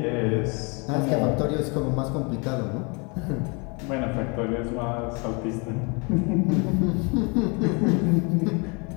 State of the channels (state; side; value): quieter; right; 31.6 dB